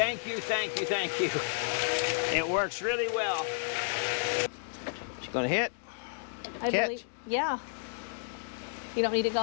you, thank you, thank you. It works really well. She's gonna hit. I believe. Yeah. You don't need it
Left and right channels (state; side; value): silent; right; digital silence